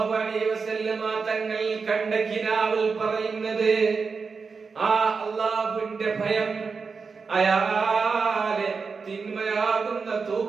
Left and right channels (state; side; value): quieter; left; 5.0 dB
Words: അലൈഹി വസല്ലമ തങ്ങൾ കണ്ട കിനാവിൽ പറയുന്നത് ആ അല്ലാഹുവിന്റെ ഭയം അയാളെ തിന്മയാകുന്ന